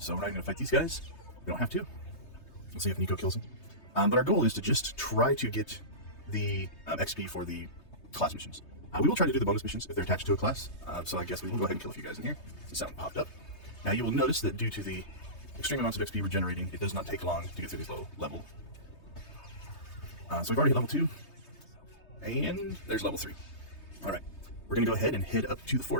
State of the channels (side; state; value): right; late; 3.2 ms